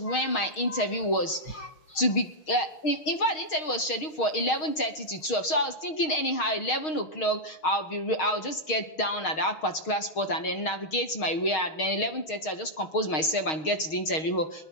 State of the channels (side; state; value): right; late; 6.4 ms